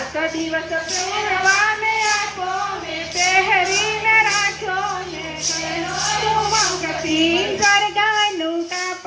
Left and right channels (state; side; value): identical; both; correlation 1.00